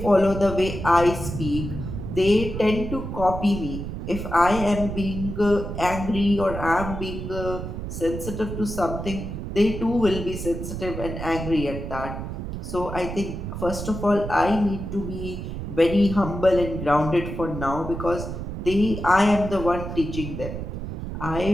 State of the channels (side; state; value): right; noise; rumble, 6 dB below the sound